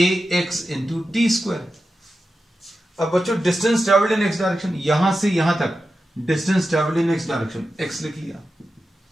into T square. अब बच्चों distance travelled in x direction, यहां से यहां तक distance travelled in x direction, x लिख लिया,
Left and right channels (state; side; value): normal; both; correlation 0.91